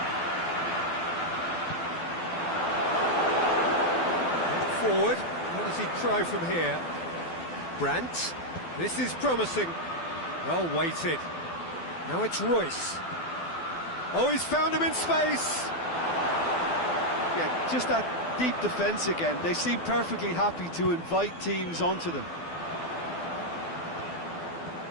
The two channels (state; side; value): late; right; 12 ms